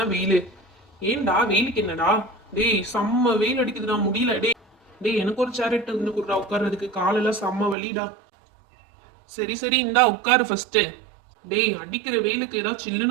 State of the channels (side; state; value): left; drops out; at 7.8 s